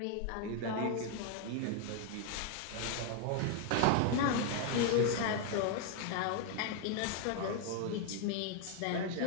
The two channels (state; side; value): different; both; correlation 0.00